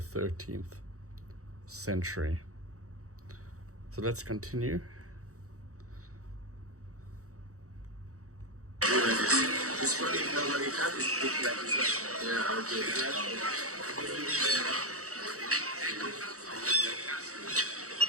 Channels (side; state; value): left; late; 0.65 ms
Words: century. So let's continue.